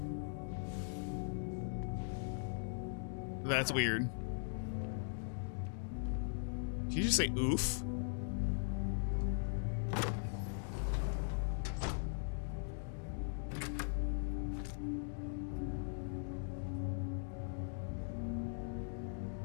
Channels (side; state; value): right; silent; digital silence